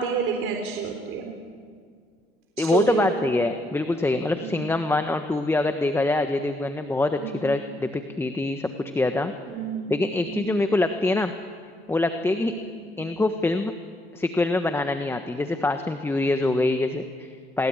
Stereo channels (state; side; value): normal; both; correlation 0.75